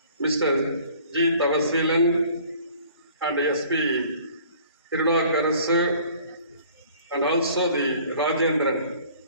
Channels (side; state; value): both; inverted; correlation -0.52